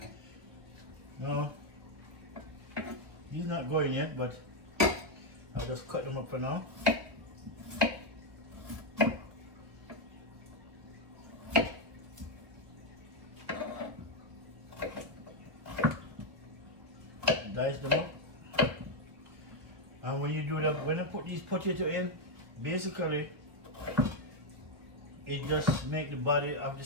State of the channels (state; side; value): late; left; 1.2 ms